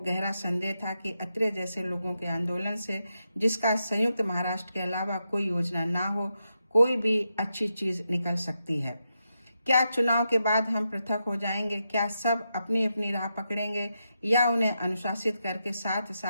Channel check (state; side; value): inverted; both; correlation -0.86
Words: संदेह था कि अत्रे जैसे लोगों के आंदोलन से, जिसका संयुक्त महाराष्ट्र के अलावा कोई योजना ना हो, कोई भी अच्छी चीज निकल सकती है। क्या चुनाव के बाद हम पृथक हो जाएंगे? क्या सब अपनी अपनी राह पकड़ेंगे या उन्हें अनुशासित करके साथ